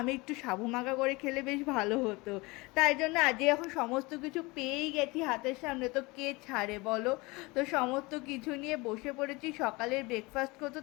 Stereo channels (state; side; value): quieter; right; 24.1 dB